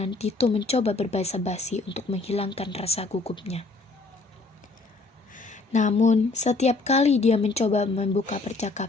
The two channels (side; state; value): right; quieter; 3.6 dB